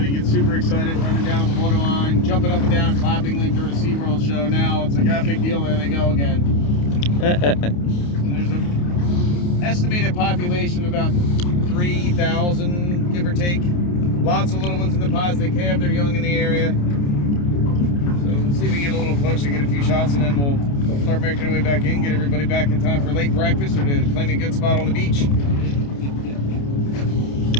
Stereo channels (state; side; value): late; right; 28 ms